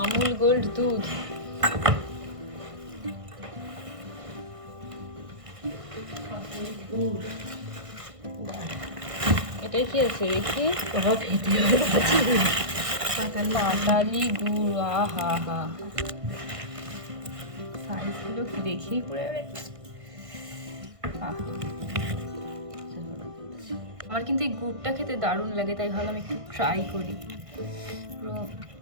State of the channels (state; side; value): late; left; 1.5 ms